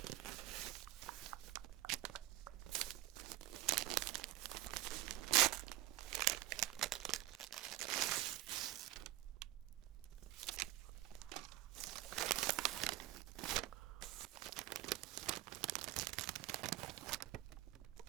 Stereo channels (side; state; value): left; quieter; 16.3 dB